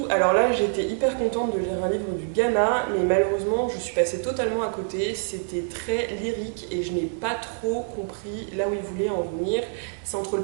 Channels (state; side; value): silent; left; digital silence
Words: Alors là, j'étais hyper contente de lire un livre du Ghana, mais malheureusement, je suis passée totalement à côté. C'était très lyrique et je n'ai pas trop compris là où il voulait en venir. C'est entre le